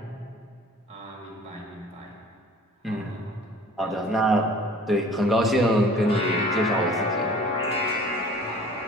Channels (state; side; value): normal; both; correlation 0.48